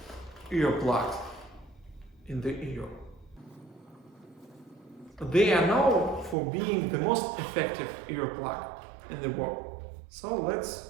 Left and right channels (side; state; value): left; drops out; at 6.4 s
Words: earplugs in the ear. They are known for being the most effective earplug in the world. So let's